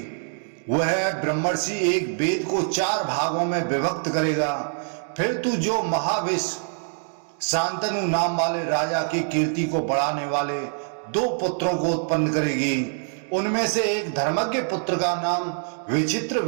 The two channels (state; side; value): silent; left; digital silence